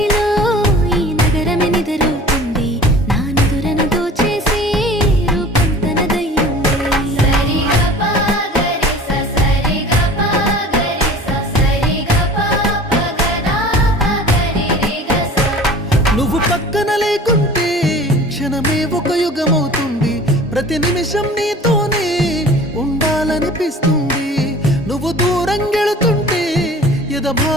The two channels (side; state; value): both; normal; correlation 0.43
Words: ఈ నగరమే నిద్రవుతుంది, నా నిదురను దోచేసి రూపం తనదయ్యింది. నువ్వు పక్కన లేకుంటే క్షణమే ఒక యుగమవుతుంది, ప్రతి నిమిషం నీతోనే ఉండాలనిపిస్తుంది. నువ్వు దూరం గెళుతుంటే ఎద